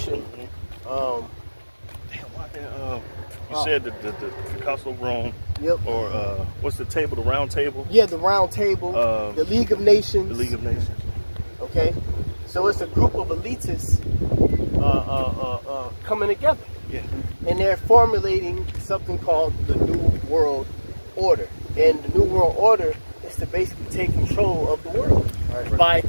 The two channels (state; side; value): inverted; both; correlation -1.00